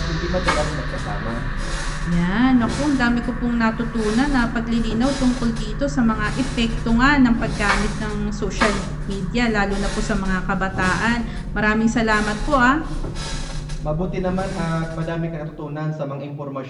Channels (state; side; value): identical; both; correlation 1.00